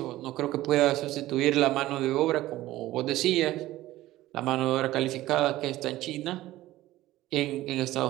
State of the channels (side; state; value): left; quieter; 16.0 dB